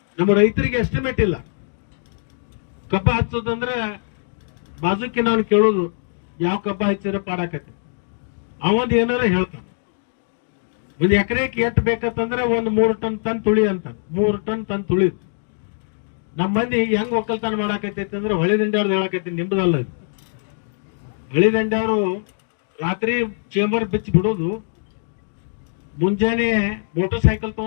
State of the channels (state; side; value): silent; right; digital silence